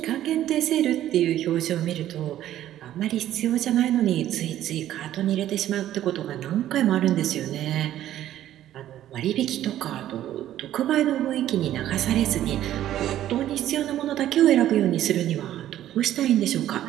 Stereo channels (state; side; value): quieter; left; 12.5 dB